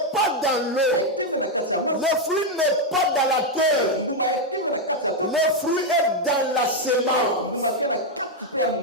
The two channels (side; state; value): both; normal; correlation 0.03